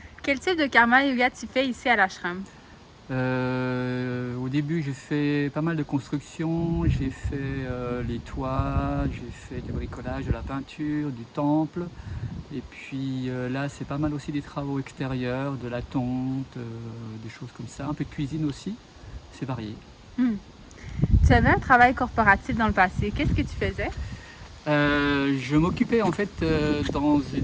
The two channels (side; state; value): both; identical; correlation 1.00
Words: Quel type de karma yoga tu fais ici à l'ashram? Au début, j'ai fait pas mal de construction. J'ai fait les toits, j'ai fait du bricolage, de la peinture, du temple. Et puis là, c'est pas mal aussi des travaux extérieurs, de la tonte, des choses comme ça. Un peu de cuisine aussi. C'est varié. Tu avais un travail corporatif dans le passé. Qu'est-ce que tu faisais? Je m'occupais en fait dans